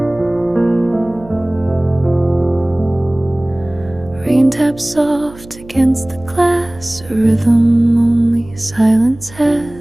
Rain taps soft against the glass, a rhythm only silence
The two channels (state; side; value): noise; right; hum, 20 dB below the sound